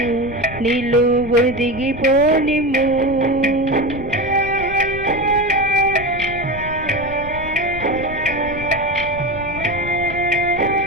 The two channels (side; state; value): left; noise; rumble, 12 dB below the sound